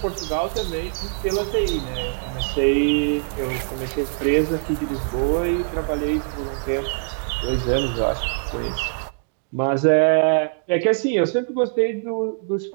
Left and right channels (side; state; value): left; silent; digital silence